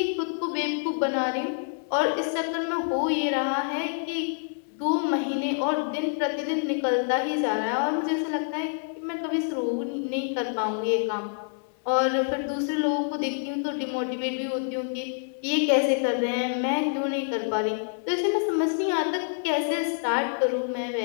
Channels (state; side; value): silent; right; digital silence